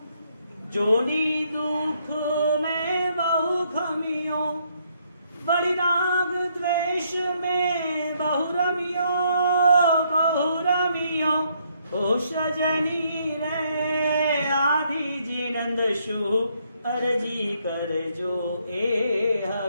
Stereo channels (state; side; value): inverted; both; correlation -0.71